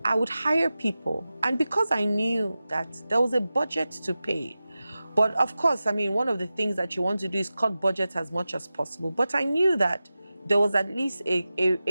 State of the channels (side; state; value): both; inverted; correlation -0.95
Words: I would hire people, and because I knew that there was a budget to pay, but of course, one of the things that you want to do is cut budget as much as possible, but I knew that there was at least